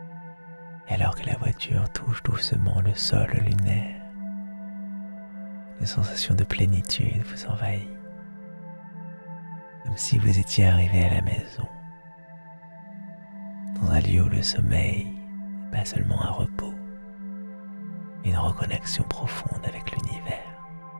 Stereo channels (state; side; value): inverted; both; correlation -1.00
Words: nourriture touche doucement le sol lunaire. Une sensation de plénitude vous envahit, comme si vous étiez arrivé à la maison, dans un lieu où le sommeil n'est pas seulement un repos, mais une reconnexion profonde avec l'univers.